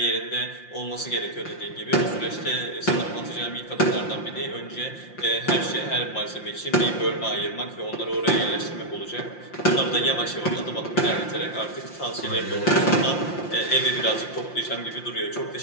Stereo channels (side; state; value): right; late; 5.7 ms